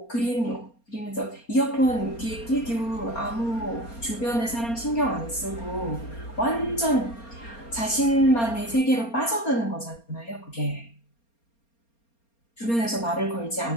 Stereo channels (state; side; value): late; right; 4.3 ms